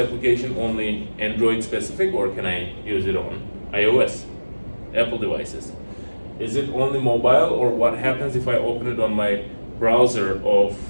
only Android specific, or can I use it on iOS, Apple devices? Is it only mobile, or what happens if I open it on my browser of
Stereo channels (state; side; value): inverted; both; correlation -1.00